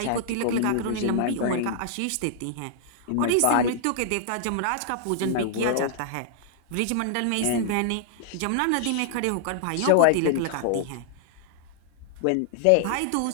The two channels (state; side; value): different; both; correlation -0.01